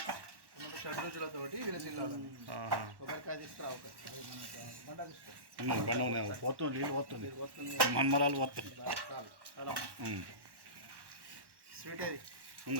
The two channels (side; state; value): left; late; 1.1 ms